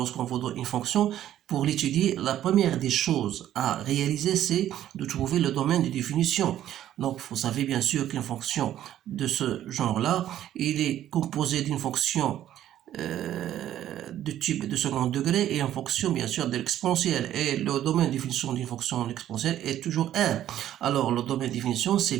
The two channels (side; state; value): left; quieter; 11.9 dB